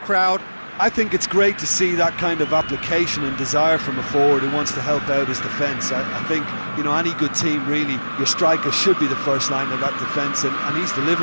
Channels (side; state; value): both; inverted; correlation -1.00